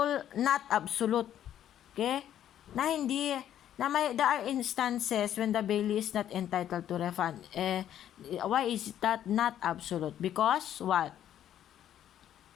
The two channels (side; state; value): right; quieter; 10.8 dB